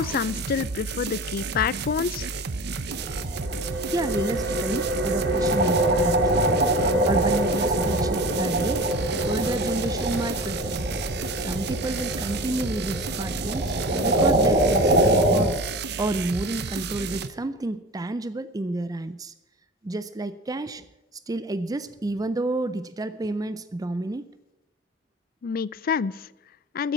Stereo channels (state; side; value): normal; both; correlation 0.35